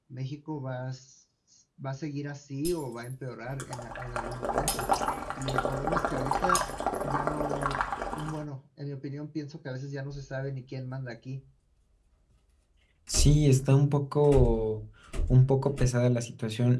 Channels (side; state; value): both; identical; correlation 1.00